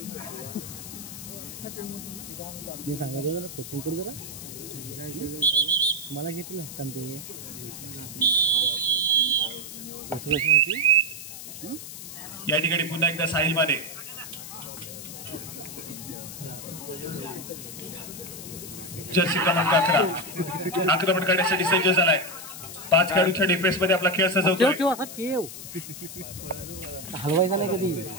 मी सांगायचं जरा कोचिंग करू जरा मला घेतलं कारण ते या ठिकाणी पुन्हा एकदा साहिल माने जर्सी क्रमांक 11 आक्रमण करण्यासाठी सज्ज झालाय. 5 खेळाडूंच्या डिफेन्स मध्ये आपला खेळ सजवतोय. हलवायचा नाही कधी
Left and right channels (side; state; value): left; noise; hiss, 11 dB below the sound